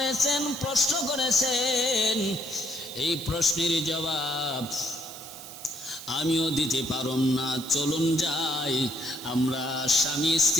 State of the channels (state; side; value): noise; right; hiss, 14 dB below the sound